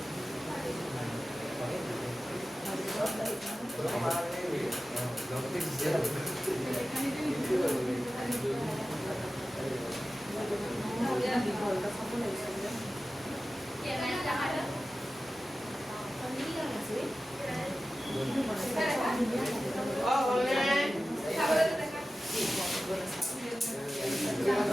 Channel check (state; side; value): normal; both; correlation 0.94